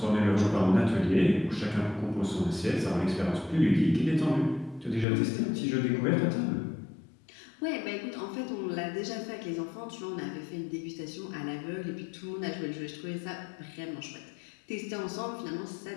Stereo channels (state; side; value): drops out; right; at 5.1 s